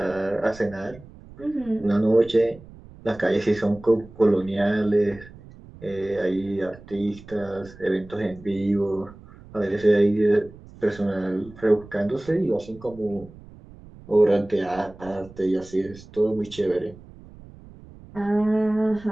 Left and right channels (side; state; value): right; noise; rumble, 20 dB below the sound